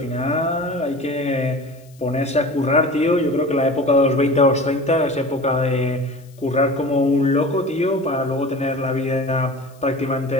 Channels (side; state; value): left; noise; hiss, 29 dB below the sound